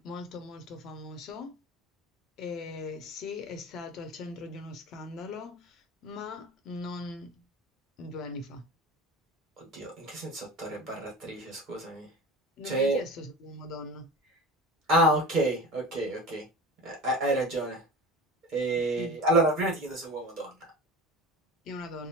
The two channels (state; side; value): normal; both; correlation 0.33